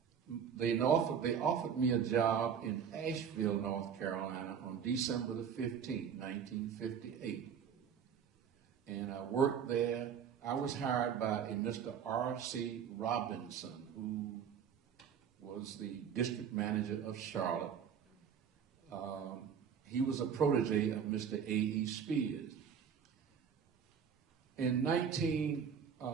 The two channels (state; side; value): quieter; left; 7.6 dB